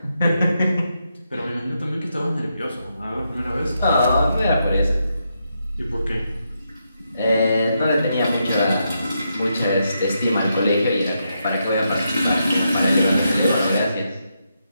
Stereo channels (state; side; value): inverted; both; correlation -0.82